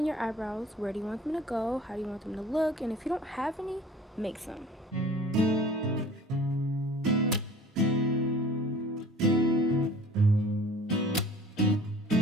your eyebrows. Where do you want them to go? How do you want them to look? And if you don't have any, make some.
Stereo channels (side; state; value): both; normal; correlation 0.47